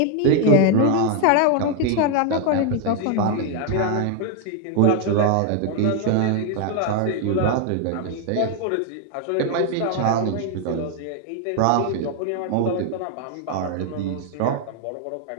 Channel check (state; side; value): different; both; correlation 0.00